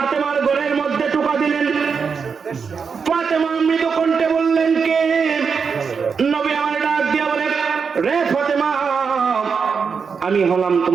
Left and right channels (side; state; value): left; quieter; 5.8 dB